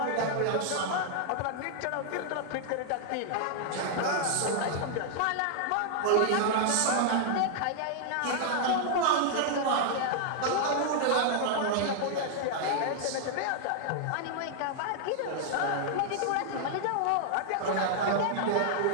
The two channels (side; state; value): both; different; correlation -0.01